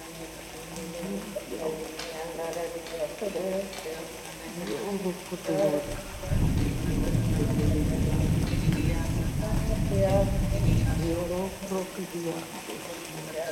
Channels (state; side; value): identical; both; correlation 1.00